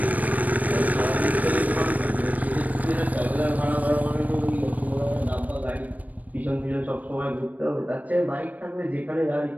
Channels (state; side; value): late; left; 0.075 ms